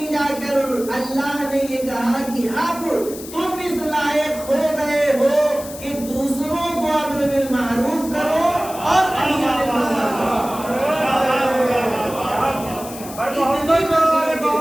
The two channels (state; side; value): noise; left; hiss, 14 dB below the sound